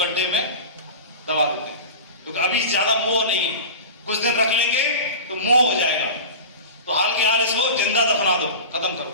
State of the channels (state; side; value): inverted; both; correlation -0.31